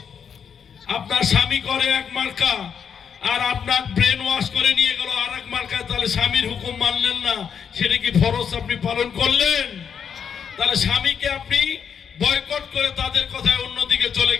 আপনার স্বামী করে এক মার্কা, আর আপনার ব্রেন ওয়াশ করে নিয়ে গেল আর এক মার্কা, তাহলে স্বামীর হুকুম মানলেন না, সেটা কি ফরজ আপনি পালন করলেন? তাহলে স্বামীকে আপনি বয়কট করে তাদের কথায় অন্যদিকে চলে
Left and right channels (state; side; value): quieter; right; 7.2 dB